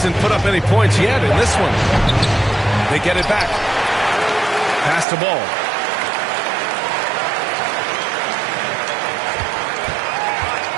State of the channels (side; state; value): left; drops out; at 5.1 s